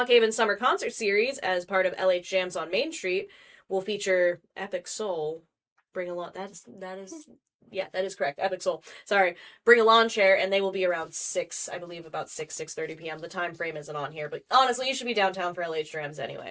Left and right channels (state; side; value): identical; both; correlation 1.00